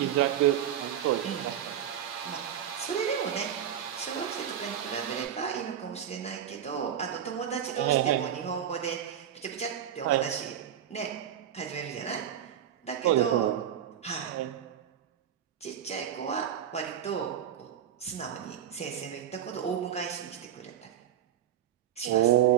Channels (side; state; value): left; quieter; 10.0 dB